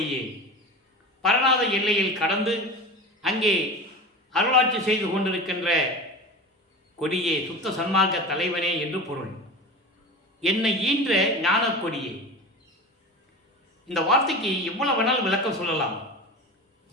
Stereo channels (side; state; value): both; normal; correlation 0.31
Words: பரநாத எல்லையில் கடந்து அங்கே அருளாட்சி செய்து கொண்டிருக்கின்ற கொடியே, சுத்த சன்மார்க்க தலைவனே என்று பொருள். என்னை ஈன்ற ஞானக் கொடியே. இந்த வார்த்தைக்கு எவ்வளவு வேணாலும் விளக்கம் சொல்லலாம்.